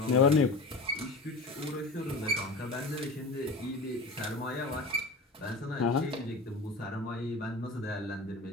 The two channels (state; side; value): quieter; right; 3.1 dB